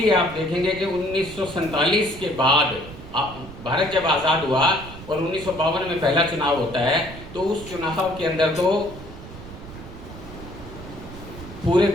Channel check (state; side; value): noise; right; rumble, 14 dB below the sound